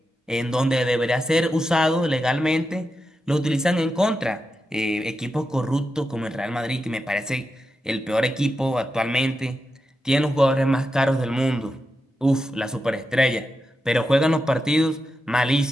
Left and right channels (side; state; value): both; normal; correlation 0.88